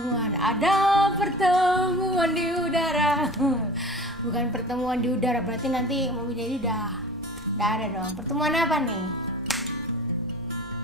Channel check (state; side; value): noise; right; rumble, 26 dB below the sound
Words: Ada pertemuan di udara. Bukan pertemuan di udara, berarti nanti Mami Dedi udah ada dong. Pertemuan apa nih?